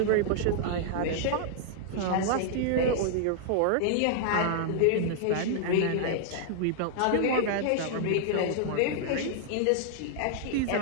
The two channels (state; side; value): different; both; correlation -0.01